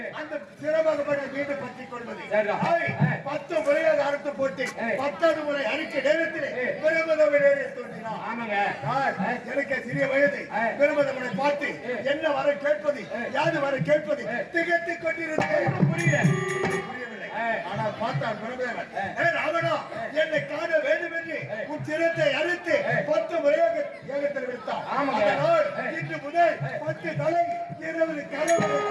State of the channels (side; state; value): both; identical; correlation 1.00